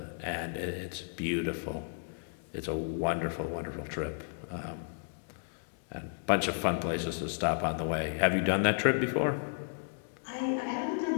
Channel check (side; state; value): right; silent; digital silence